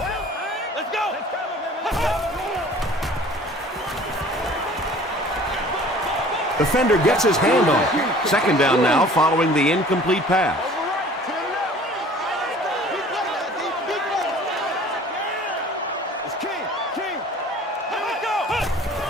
Defender gets his hand on it. Second down now following the incomplete pass.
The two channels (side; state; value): both; normal; correlation 0.48